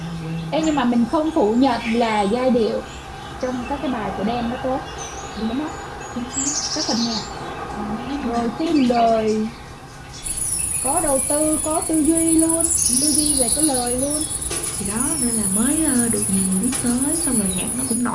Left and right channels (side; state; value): both; identical; correlation 1.00